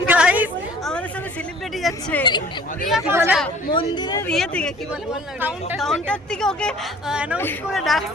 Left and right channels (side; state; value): both; normal; correlation 0.51